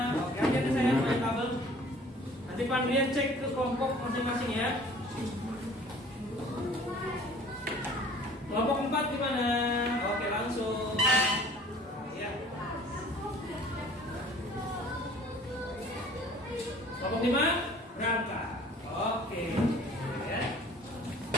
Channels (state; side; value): normal; both; correlation 0.50